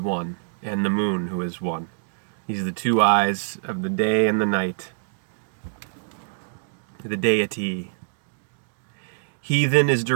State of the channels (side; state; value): left; silent; digital silence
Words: and the moon, who is one. These are the two eyes of the day and the night. The deity. Heathen is